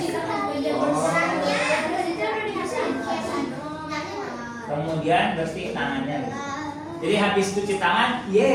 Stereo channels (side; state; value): both; identical; correlation 1.00